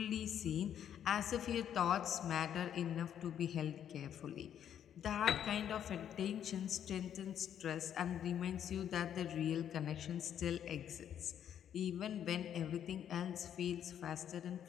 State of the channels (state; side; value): quieter; right; 9.6 dB